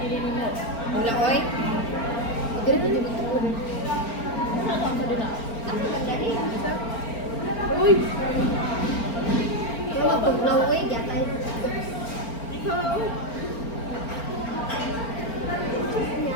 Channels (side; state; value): right; late; 4.4 ms